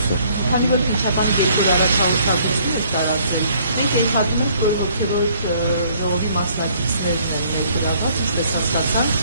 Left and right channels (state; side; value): inverted; both; correlation -0.62